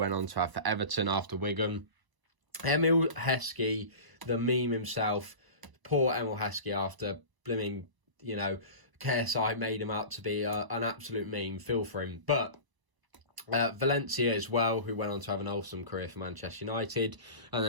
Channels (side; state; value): left; late; 1.0 ms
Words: on to have for Everton after Wigan. Emil Heskey, the meme himself. Poor Emil Heskey after blimming, KSI made him out to be an absolute meme. Feel for him. But Valencia as well, who went on to have an awesome career for Manchester United. And